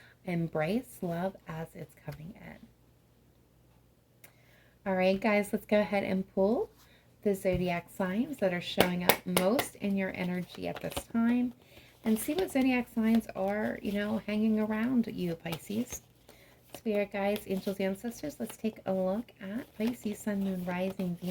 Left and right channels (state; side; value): identical; both; correlation 1.00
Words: embrace love as it's coming in. All right, guys, let's go ahead and pull the zodiac signs that are showing up most in your energy at this time and see what zodiac signs are, hanging around you, Pisces. Spirit guides, angels, ancestors, let's take a look at Pisces, Sun, Moon, Rising,